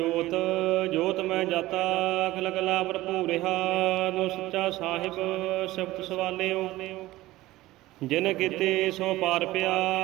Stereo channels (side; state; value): left; quieter; 17.4 dB